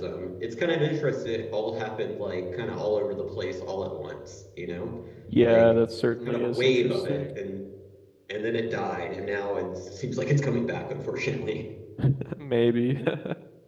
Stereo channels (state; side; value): identical; both; correlation 1.00